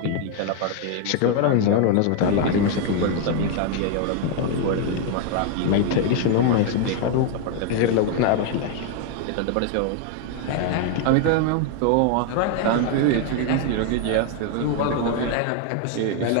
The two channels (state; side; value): different; both; correlation 0.00